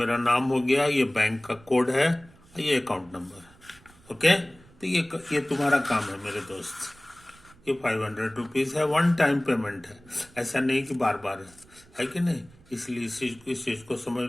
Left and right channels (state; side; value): noise; right; rumble, 26 dB below the sound